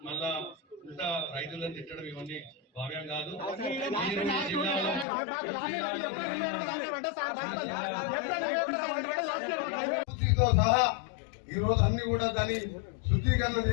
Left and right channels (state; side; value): drops out; right; at 5.1 s